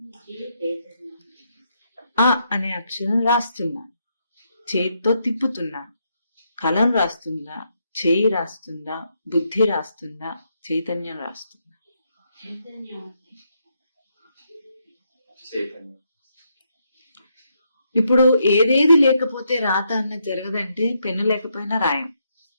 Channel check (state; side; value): inverted; both; correlation -0.78